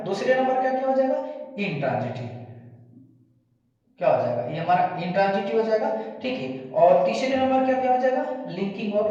दूसरे नंबर का क्या हो जाएगा, इंट्रांजिटिव, क्या हो जाएगा, ये हमारा इंट्रांजिटिव हो जाएगा, ठीक है। और तीसरे नंबर का क्या हो जाएगा, लिंकिंग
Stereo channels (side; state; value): both; identical; correlation 1.00